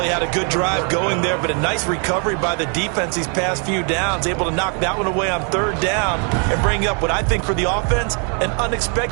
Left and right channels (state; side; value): quieter; left; 39.1 dB